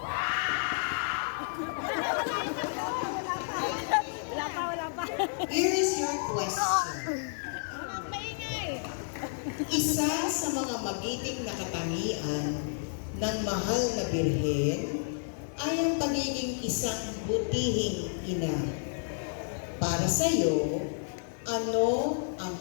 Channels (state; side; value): silent; right; digital silence